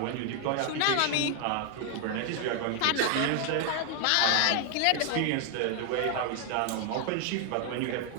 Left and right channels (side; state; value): both; different; correlation 0.00